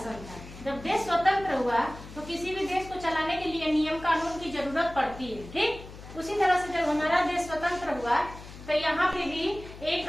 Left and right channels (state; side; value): noise; left; hum, 15 dB below the sound